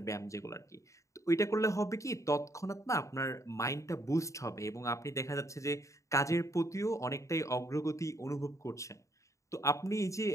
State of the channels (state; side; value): late; right; 0.15 ms